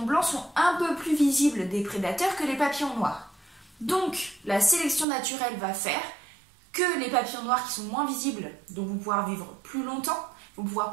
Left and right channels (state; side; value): drops out; left; at 5.1 s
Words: blancs sont un peu plus visibles des prédateurs que les papillons noirs. Donc la sélection naturelle va faire que les papillons noirs qui sont moins visibles, donc vont pouvoir vivre plus longtemps, vont pouvoir